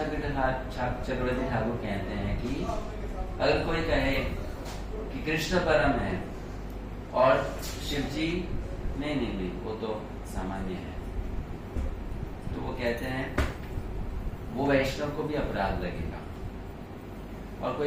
चक्रवर्ती ठाकुर कहते हैं कि अगर कोई कहे कि कृष्ण परम है और शिव जी नहीं वो तो सामान्य है, तो वो कहते हैं वो वैष्णव को भी अपराध लगेगा। और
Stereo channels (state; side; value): identical; both; correlation 1.00